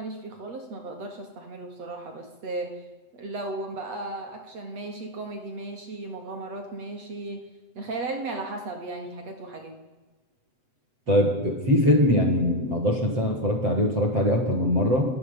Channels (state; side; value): late; left; 7.9 ms